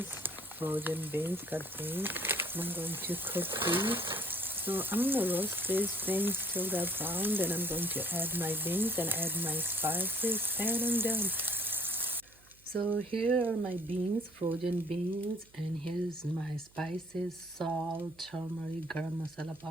frozen beans, cut beans. I'm going to cook these. So I'm gonna roast these things till they're brown. Then I'm going to add my beans and add my spices, and I'm done. So here are my beans, frozen beans, and here's my spices: salt, turmeric, garam masala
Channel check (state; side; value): noise; right; hum, 29 dB below the sound